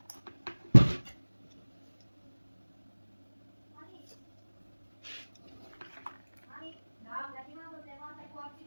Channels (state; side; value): inverted; both; correlation -1.00